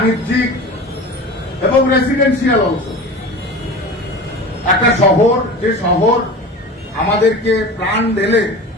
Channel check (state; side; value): normal; both; correlation 0.34